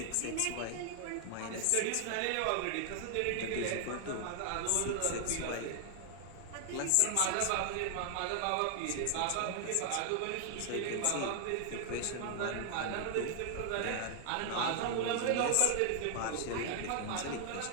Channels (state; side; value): different; both; correlation 0.00